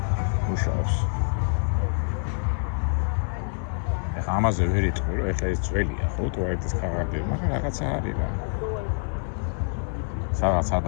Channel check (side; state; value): right; silent; digital silence